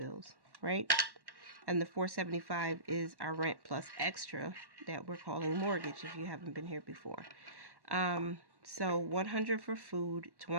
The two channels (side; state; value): left; late; 1.1 ms